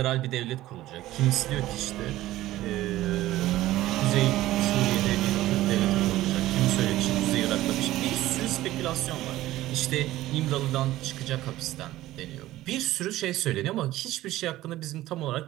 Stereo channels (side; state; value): left; quieter; 15.6 dB